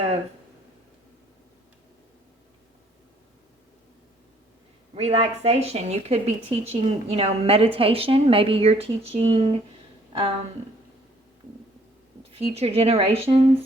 relaxation. You could be teaching, meditation. Maybe you're teaching future generations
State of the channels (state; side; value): normal; both; correlation 0.61